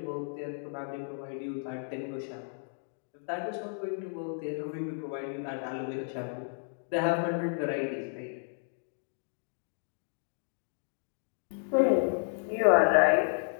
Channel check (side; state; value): right; silent; digital silence